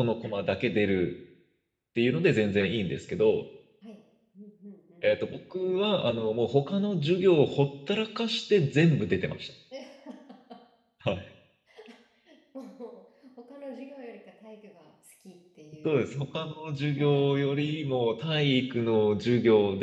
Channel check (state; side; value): identical; both; correlation 1.00